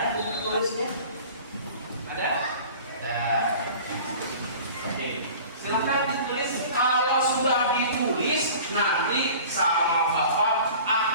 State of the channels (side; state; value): both; inverted; correlation -0.43